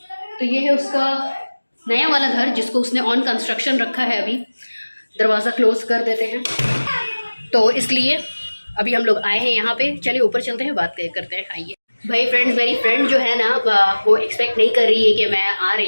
तो ये है उसका नया वाला घर जिसको उसने ऑन कंस्ट्रक्शन रखा है। अभी दरवाज़ा क्लोज कर देते हैं, तो इसलिए अभी हम लोग आए हैं यहाँ पे। चलिए ऊपर चलते हैं, बात करते हैं। आइए भाई फ्रेंड्स, मेरी फ्रेंड जो है ना वो एक्सपेक्ट नहीं कर रही है कि मैं आ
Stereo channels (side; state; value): both; inverted; correlation -1.00